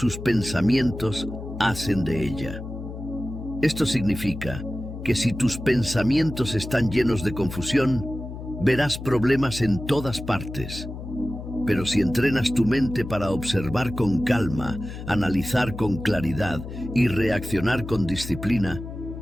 pensamientos hacen de ella. Esto significa que si tus pensamientos están llenos de confusión, verás problemas en todas partes. Pero si entrenas tu mente para observar con calma, analizar con claridad y reaccionar con disciplina,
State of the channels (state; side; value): noise; left; hum, 10 dB below the sound